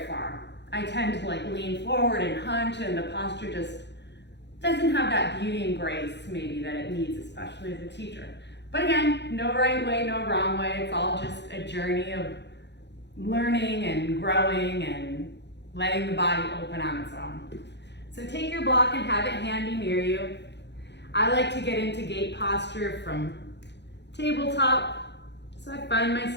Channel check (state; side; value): late; right; 0.50 ms